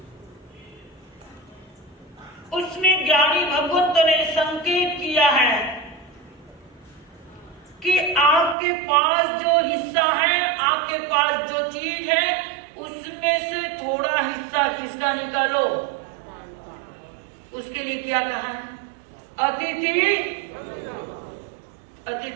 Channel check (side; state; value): left; drops out; at 8.6 s